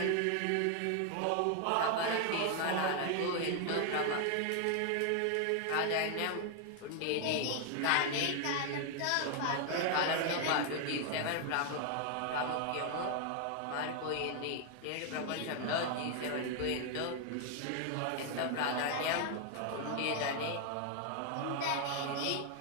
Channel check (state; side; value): different; both; correlation 0.00